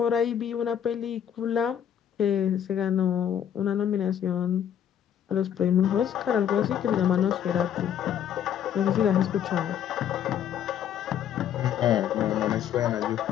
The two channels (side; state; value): right; quieter; 9.5 dB